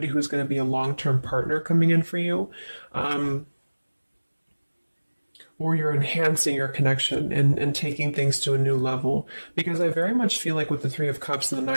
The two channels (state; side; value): inverted; both; correlation -1.00